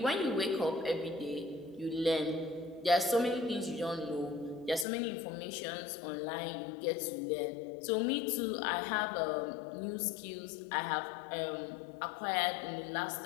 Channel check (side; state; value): right; drops out; at 4.9 s